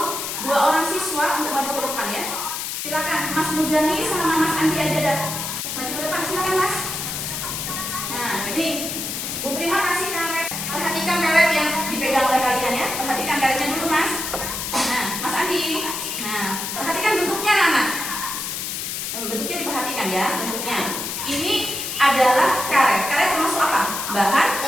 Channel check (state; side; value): noise; left; hiss, 4 dB below the sound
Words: 2 orang siswa untuk maju ke depan ya. Silakan Mas Muzani sama Mas Andi aja dah. Maju ke depan, silakan Mas. Nah, ini Bu Prima kasih karet. Perhatikan karet yang dipegang oleh kalian ya. Perhatikan karetnya dulu Mas. Nah, Mas Andi. Nah, perhatikan bentuknya anak. Bentuknya diperhatikan ya, bentuknya. Ini adalah karet. Karet termasuk apa? Bahan